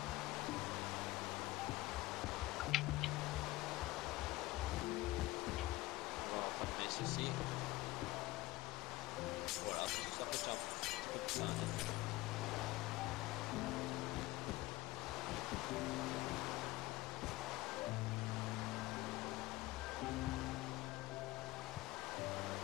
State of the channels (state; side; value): quieter; right; 18.5 dB